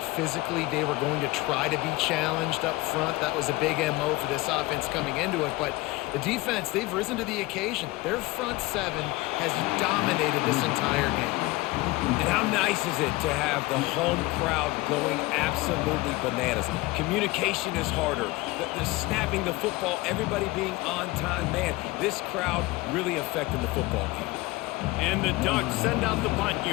physically they were going to try to be challenged up front. That was a big MO for this offense coming into it. But the defense, they've risen to the occasion. Their front 7 has dominated this entire game. And how nice is it to have the home crowd going absolutely bananas? Communication is harder. The snapping the football, everybody being on time. Man, this crowd really affected the football game. And the Ducks send out the punt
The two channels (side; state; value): right; quieter; 20.9 dB